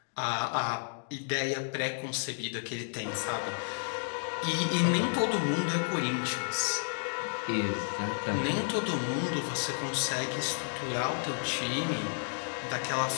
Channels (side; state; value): right; silent; digital silence